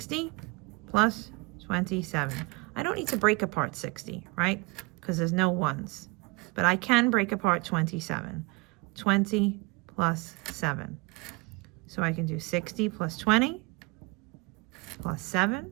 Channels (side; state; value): left; quieter; 25.3 dB